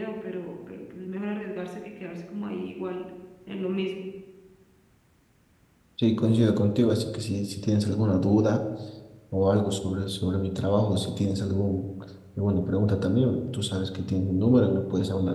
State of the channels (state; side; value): identical; both; correlation 1.00